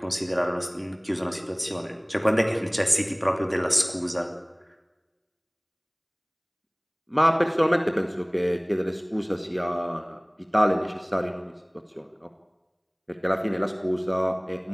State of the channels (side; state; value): both; identical; correlation 1.00